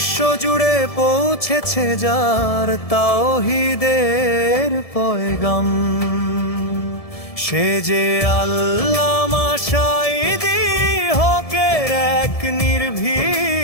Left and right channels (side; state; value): right; late; 1.7 ms